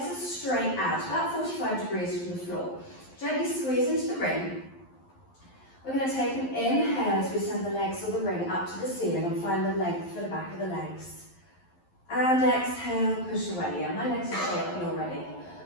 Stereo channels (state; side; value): late; right; 11 ms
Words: are straight out, about 45 degrees from the floor. Gently squeeze into the ring. We're going to take an inhale as we send the legs or the ring up to the ceiling and find the length for the back of the legs. And exhale, push away. Yeah, my legs are shaking already.